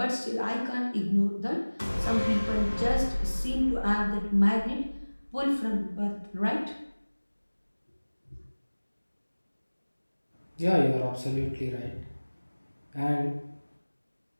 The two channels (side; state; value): both; inverted; correlation -1.00